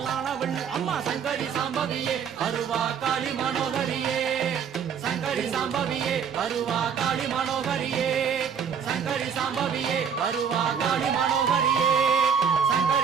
நீ அம்மா சங்கரி சாம்பவியே அருவா காளி மனோகரியே சங்கரி சாம்பவியே அருவா காளி மனோகரியே சங்கரி சாம்பவியே அருவா காளி மனோகரியே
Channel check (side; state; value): left; quieter; 7.2 dB